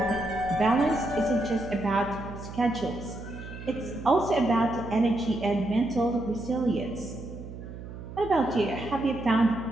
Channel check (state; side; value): noise; right; hum, 12 dB below the sound